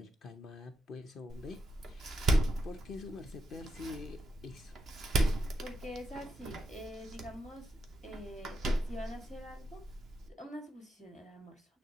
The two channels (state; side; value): normal; both; correlation 0.82